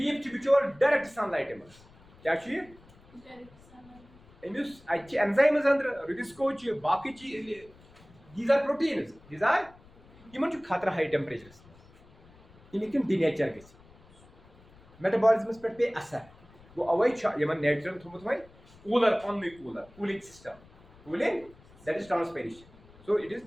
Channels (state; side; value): noise; left; rumble, 25 dB below the sound